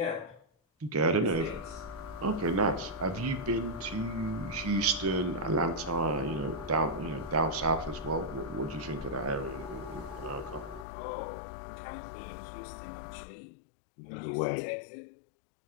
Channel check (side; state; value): right; drops out; at 10.9 s